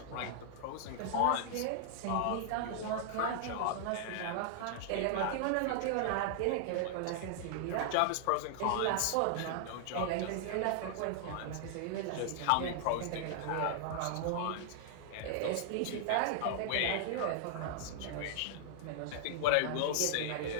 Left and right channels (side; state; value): both; different; correlation -0.01